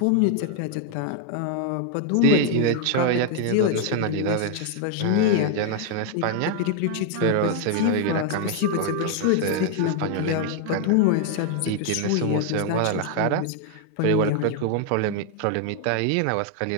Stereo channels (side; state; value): both; different; correlation 0.00